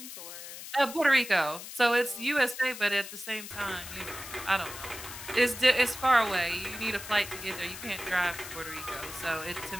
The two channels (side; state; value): left; noise; hiss, 11 dB below the sound